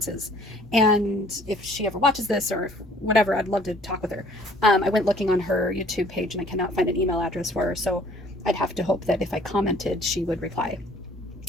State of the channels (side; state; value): both; normal; correlation 0.56